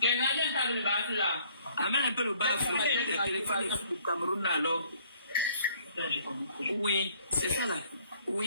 Amène un peu le bas, le téléphone du Cameroun alors. Oui, c'est ça là.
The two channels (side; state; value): both; inverted; correlation -0.61